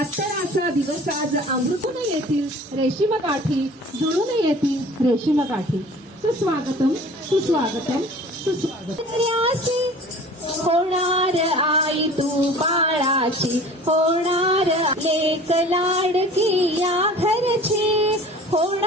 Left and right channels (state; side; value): normal; both; correlation 0.44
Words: दिवस आज अमृतून येतील रेशीम गाठी, जुळून येतील रेशीम गाठी. सुस्वागतम सुस्वागतम सुस्वागतम. होणार आई तू बाळाची, होणार लेक लाडकी या घरची,